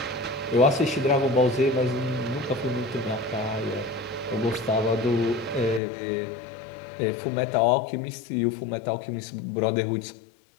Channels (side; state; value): right; drops out; at 5.8 s